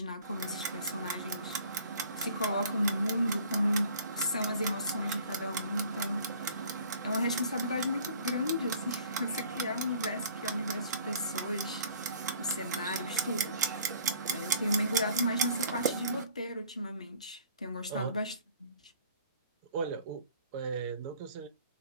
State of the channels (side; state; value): both; inverted; correlation -0.53